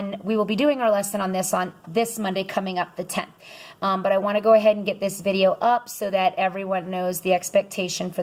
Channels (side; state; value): both; identical; correlation 1.00